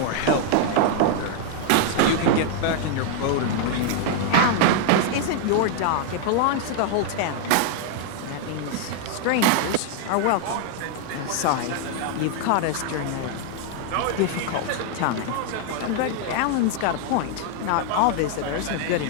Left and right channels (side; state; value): both; different; correlation 0.00